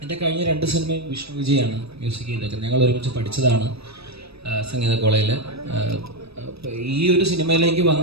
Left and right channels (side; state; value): left; late; 0.78 ms